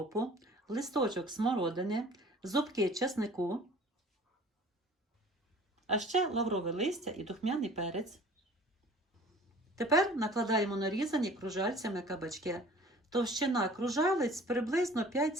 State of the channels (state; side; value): normal; both; correlation 0.47